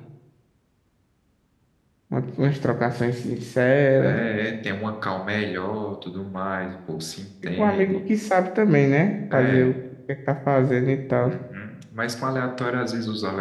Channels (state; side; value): identical; both; correlation 1.00